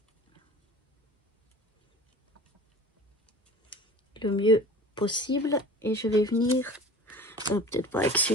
Le mieux possible. Et je vais venir, peut-être pas avec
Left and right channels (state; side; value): normal; both; correlation 0.41